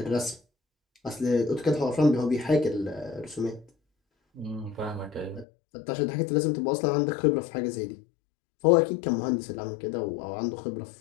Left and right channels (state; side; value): drops out; right; at 5.5 s